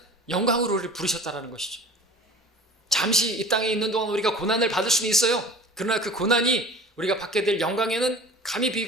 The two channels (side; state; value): both; normal; correlation 0.41